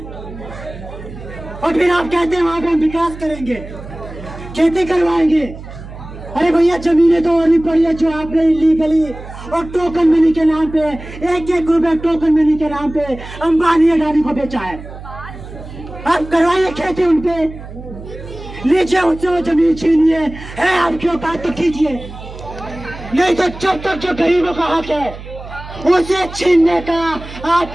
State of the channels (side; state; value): right; noise; hum, 14 dB below the sound